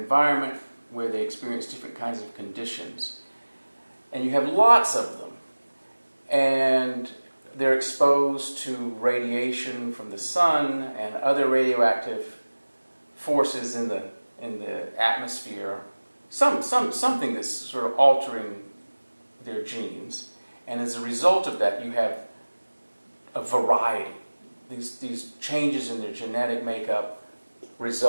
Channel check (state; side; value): inverted; both; correlation -1.00